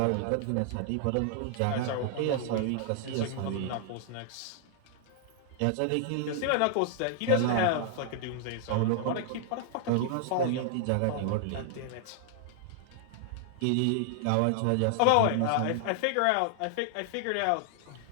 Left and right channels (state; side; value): different; both; correlation 0.00